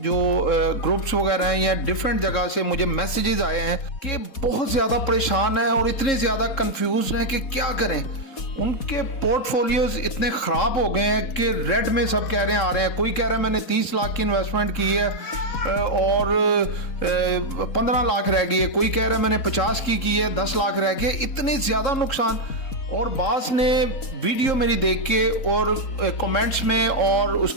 ग्रुप्स वगैरह हैं या डिफरेंट जगह से मुझे मैसेजेस आए हैं कि बहुत ज़्यादा परेशान हैं और इतने ज़्यादा कंफ्यूज हैं कि क्या करें। उनके पोर्टफोलियोज इतने ख़राब हो गए हैं कि रेड में सब कह रहे हैं आ रहे हैं। कोई कह रहा है मैंने 30 लाख की इन्वेस्टमेंट की है और 15 लाख रह गई है। कोई कह रहा है मैंने 50 की है 10 लाख रह गए। इतने ज़्यादा नुकसान। और बास ने वीडियो मेरी देख के और कमेंट्स में और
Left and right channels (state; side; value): late; right; 4.1 ms